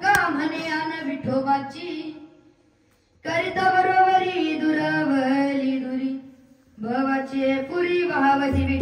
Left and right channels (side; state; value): both; identical; correlation 1.00